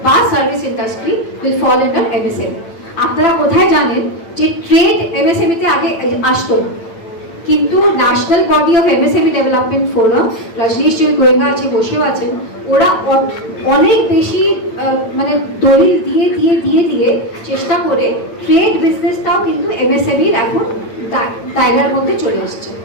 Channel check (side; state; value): right; late; 8.9 ms